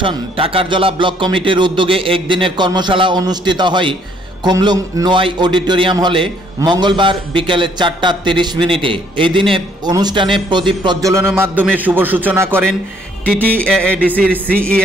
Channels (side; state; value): both; normal; correlation 0.65